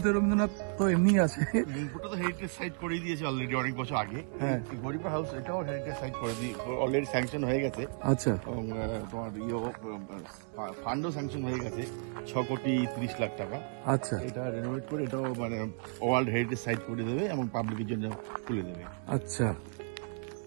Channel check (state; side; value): silent; left; 56 dB below the other